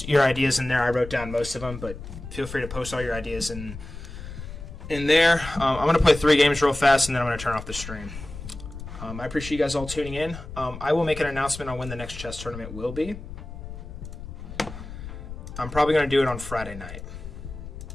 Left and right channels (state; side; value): noise; left; rumble, 11 dB below the sound